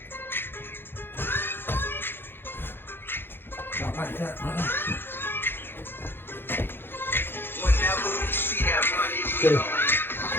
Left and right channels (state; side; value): late; right; 0.10 ms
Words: not like that, brother. Okay,